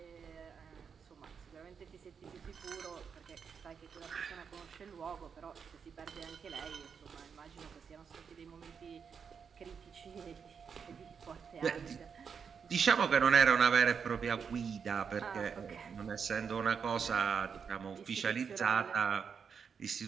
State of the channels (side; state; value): left; quieter; 6.5 dB